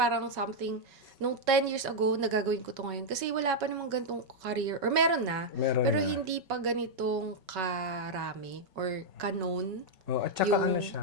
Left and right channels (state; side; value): late; left; 5.3 ms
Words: something, nung 10 years ago, nagagawin ko to ngayon. Kasi wala pa namang ganitong career, or meron na, Meron pero na. hindi pa ganitong karami, or ka-known, Oh, at saka yung siya,